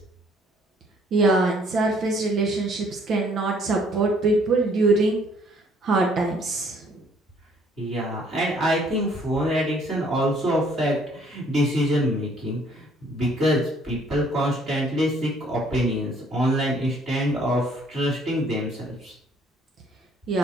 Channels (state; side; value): normal; both; correlation 0.61